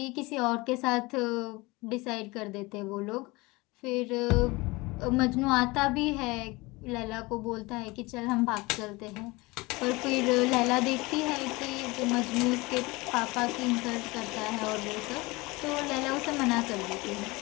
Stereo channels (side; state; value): right; quieter; 23.3 dB